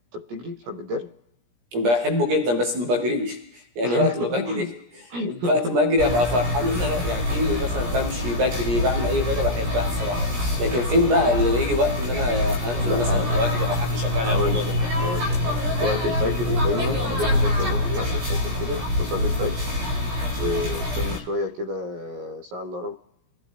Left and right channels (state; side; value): late; left; 17 ms